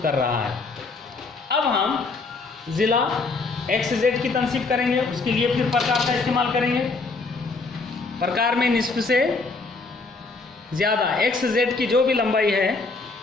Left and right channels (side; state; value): right; quieter; 3.8 dB